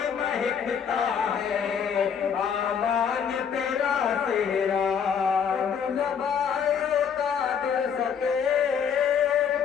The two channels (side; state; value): right; quieter; 7.3 dB